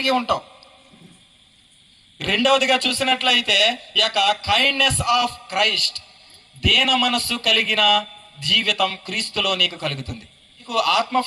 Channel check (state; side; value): identical; both; correlation 1.00